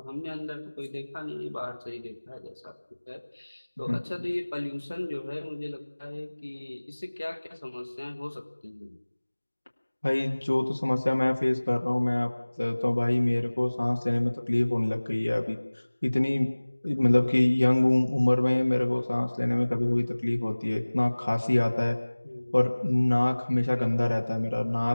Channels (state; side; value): inverted; both; correlation -1.00